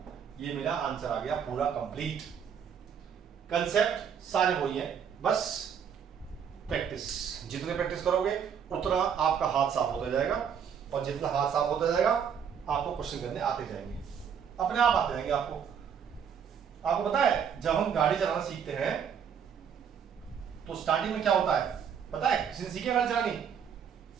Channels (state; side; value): quieter; left; 7.6 dB